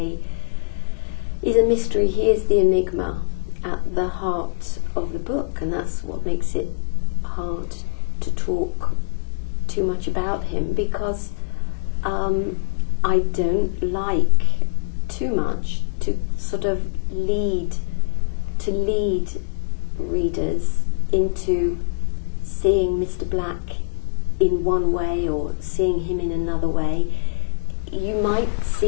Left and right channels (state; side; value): silent; right; 58 dB below the other